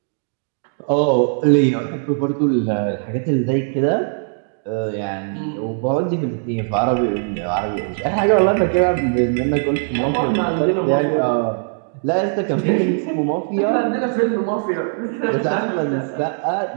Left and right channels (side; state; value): left; silent; digital silence